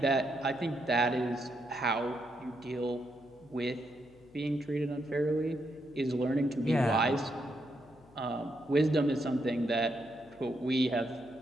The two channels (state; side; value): noise; left; hum, 27 dB below the sound